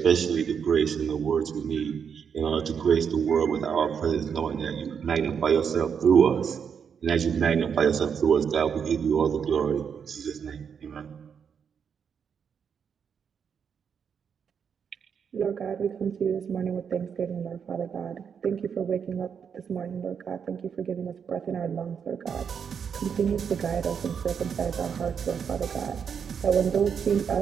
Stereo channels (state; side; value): quieter; left; 7.1 dB